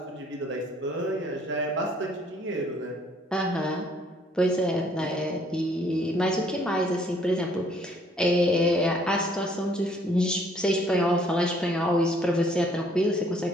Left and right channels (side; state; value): both; normal; correlation 0.62